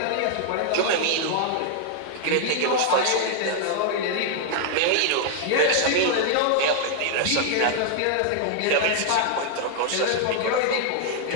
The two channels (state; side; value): different; both; correlation -0.01